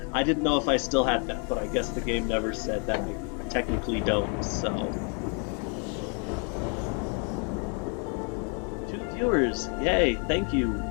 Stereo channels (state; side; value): quieter; right; 38.6 dB